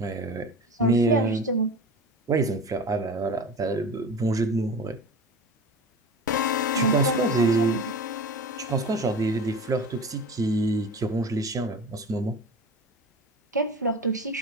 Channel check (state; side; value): normal; both; correlation 0.33